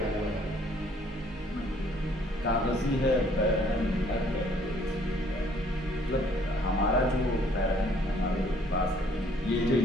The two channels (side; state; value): both; normal; correlation 0.61